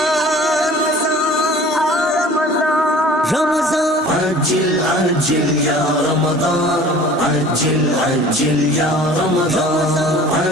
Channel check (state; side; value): normal; both; correlation 0.46